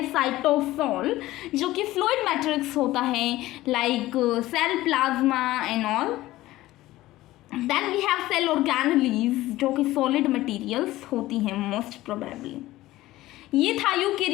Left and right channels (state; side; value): quieter; right; 16.7 dB